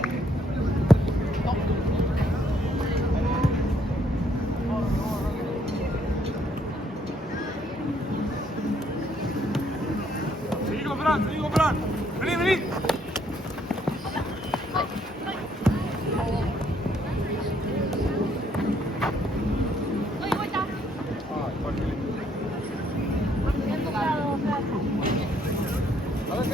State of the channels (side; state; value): both; normal; correlation 0.68